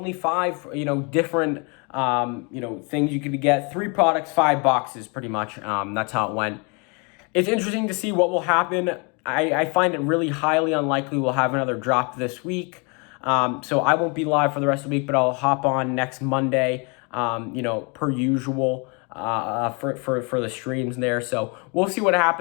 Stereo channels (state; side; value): quieter; right; 32.6 dB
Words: 5, different, things you could get. 3 products, 5 boxes, pretty much. That's how it went. It's interesting to see what will happen. I find it really highly unlikely we'll have another drop this week. So I won't be live for the rest of the week, but I'll hop on next Monday, per usual, for the streams there. So we'll see what